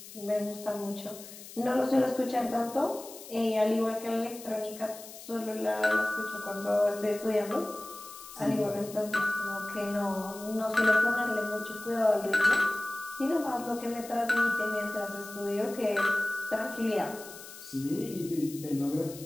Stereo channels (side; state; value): left; noise; hiss, 15 dB below the sound